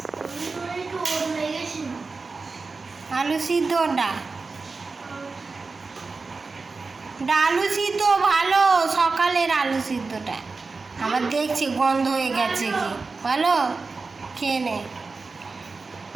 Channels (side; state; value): left; quieter; 4.1 dB